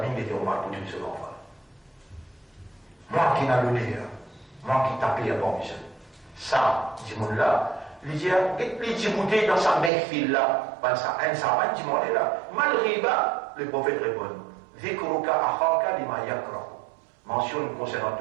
il était Omar pour tuer ce enfant. Moi qui n'a l'honneur, moi qui tapais à bon monsieur. Ça, dit mon là, il dit, il dit, dans sa mère fille là, un savant, dit mon là, malgré bas, le prophète répond, Zikruka akhaka lima yakrahu. Mentionne concernant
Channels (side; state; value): left; drops out; at 9.9 s